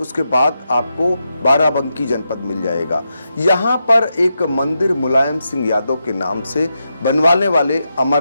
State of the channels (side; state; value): both; inverted; correlation -0.86